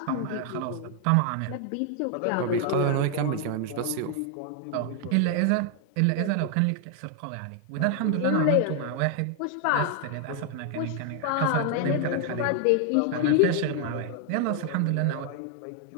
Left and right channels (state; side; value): different; both; correlation 0.00